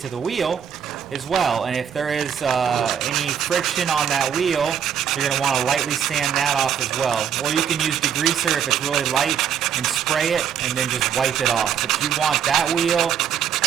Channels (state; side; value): quieter; left; 8.4 dB